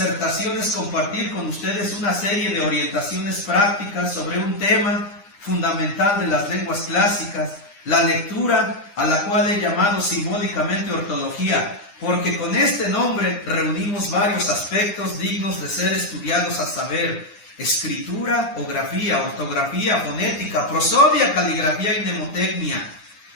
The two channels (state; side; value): late; right; 9.9 ms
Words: es compartir con ustedes una serie de orientaciones prácticas sobre un tema fundamental de las lenguas clásicas, la lectura, a la cual he llamado simbólicamente ortología, porque con este nombre reunimos varios aspectos dignos de ser estudiados, a saber, escritura o grafía, ortografía, fonética, prosodia, caligrafía y mnemotecnia.